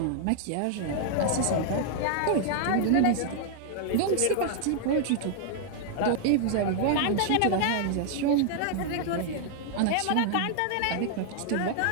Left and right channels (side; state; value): both; different; correlation -0.01